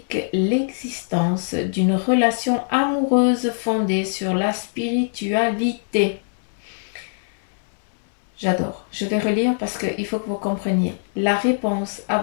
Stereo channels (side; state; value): right; silent; digital silence